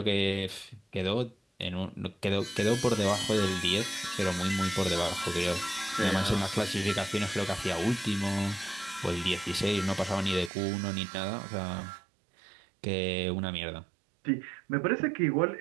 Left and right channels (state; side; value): drops out; left; at 10.5 s